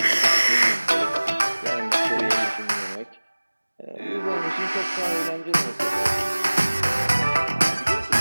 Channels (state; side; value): inverted; both; correlation -1.00